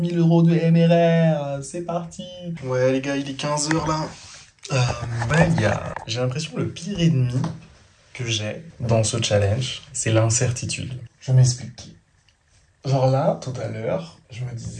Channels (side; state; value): both; identical; correlation 1.00